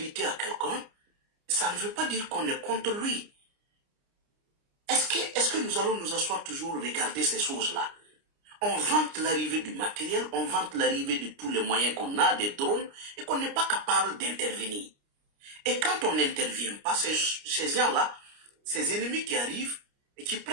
à quelqu'un, ça ne veut pas dire qu'on est contre lui. Est-ce que nous allons nous asseoir toujours regarder ces choses-là? On vante l'arrivée du matériel, on vante l'arrivée de tous les moyens qu'on a, des drones, et qu'on n'est pas capable d'intervenir. Et quand on n'intervient pas, ces gens-là, ces ennemis qui arrivent et qui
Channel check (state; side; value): late; left; 29 ms